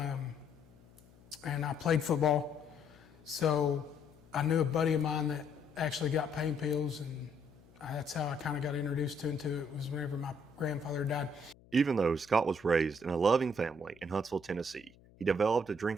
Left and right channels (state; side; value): noise; left; hum, 26 dB below the sound